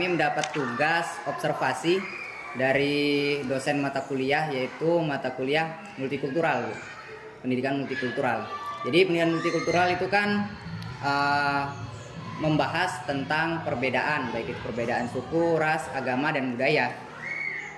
mendapat tugas observasi dari dosen mata kuliah, yaitu mata kuliah multikultural, Bu. Pendidikan multikultural. Jadi pendidikan multikultural itu kan membahas tentang perbedaan, baik itu perbedaan suku, ras, agama, dan budaya.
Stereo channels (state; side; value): identical; both; correlation 1.00